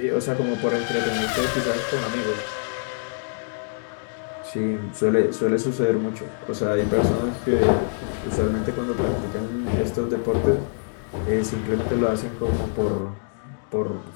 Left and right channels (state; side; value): silent; right; digital silence